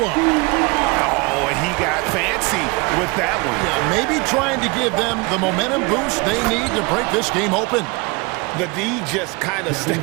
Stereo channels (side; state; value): left; quieter; 27.1 dB